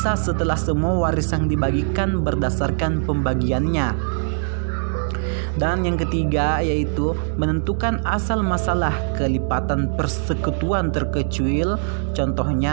setelah semua warisan dibagikan berdasarkan pembagiannya. Dan yang ketiga yaitu menentukan asal masalah kelipatan persekutuan terkecuil,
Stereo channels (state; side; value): silent; left; digital silence